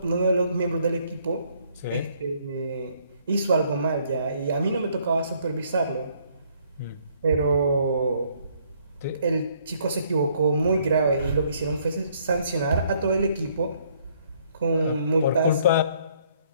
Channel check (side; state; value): both; inverted; correlation -0.66